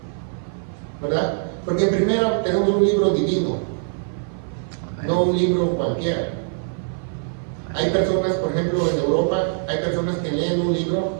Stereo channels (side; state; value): left; silent; 55 dB below the other